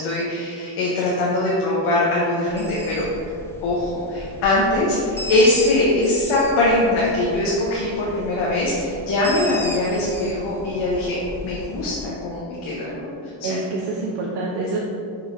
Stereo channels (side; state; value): both; normal; correlation 0.05